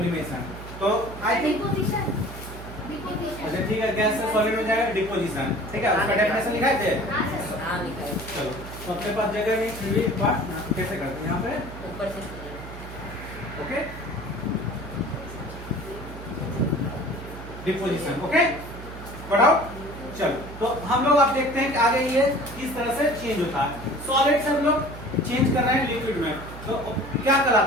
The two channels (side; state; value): right; noise; hum, 12 dB below the sound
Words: तो आई थिंक अच्छा ठीक है, गैस से सॉलिड में जाएगा डिपोजिशन। ठीक है, उसका डेफिनेशन लिखाए थे। हाँ लिखा है। चलो, तो अपने पास जगह नहीं, फिर भी एक बार कैसे करते हैं यहाँ पे, ऊपर से ओके, डिपोजिशन। ओके, बढ़ाओ। चलो, तो हम लोग अब देखते हैं कि आगे ये किस तरह से चेंज होता है। सॉलिड से हम लोग चेंज कर रहे हैं लिक्विड में, तो क्या